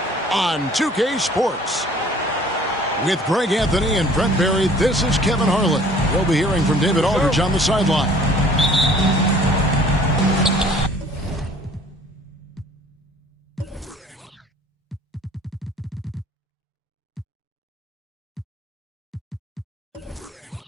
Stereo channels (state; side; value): normal; both; correlation 0.52